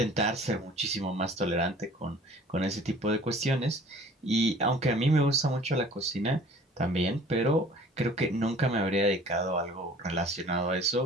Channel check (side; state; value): both; normal; correlation 0.49